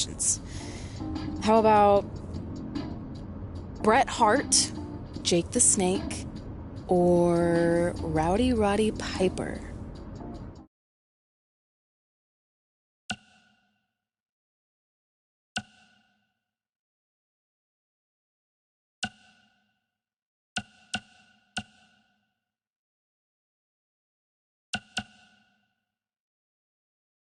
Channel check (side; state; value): both; identical; correlation 1.00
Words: How about Bret Hart, Jake the Snake, or Rowdy Roddy Piper?